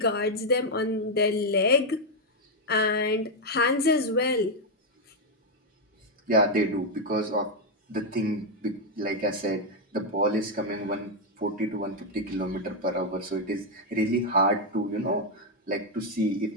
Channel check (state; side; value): normal; both; correlation 0.02